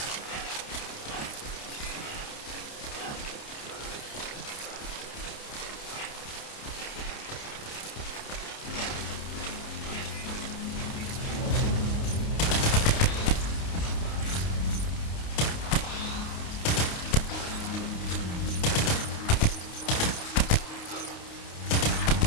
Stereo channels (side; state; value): right; late; 29 ms